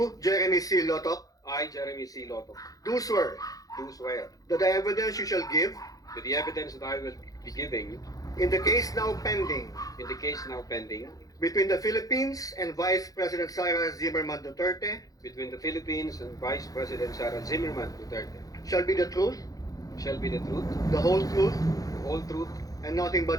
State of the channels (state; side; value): late; right; 0.17 ms